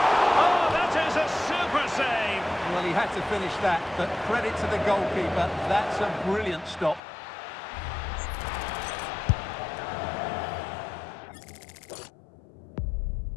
Oh, that is a super save. Well, he had to finish that, but credit to the goalkeeper. That's a brilliant stop.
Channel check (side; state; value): right; drops out; at 7.0 s